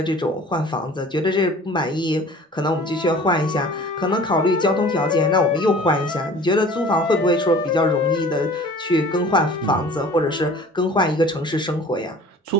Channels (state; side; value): normal; both; correlation 0.46